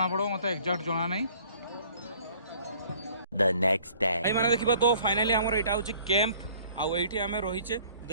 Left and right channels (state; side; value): inverted; both; correlation -0.55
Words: पड़ो मत एक्जाक्ट जना नहीं The next day. भाई मैंने देखा तो फाइनाली आमर यहाँ हूँ कैंप आउ ये आम रहीचे